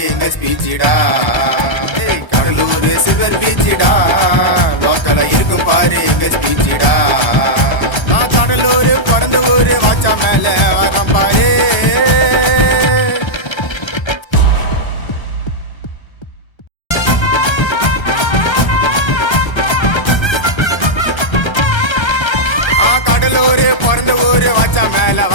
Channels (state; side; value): late; right; 1.3 ms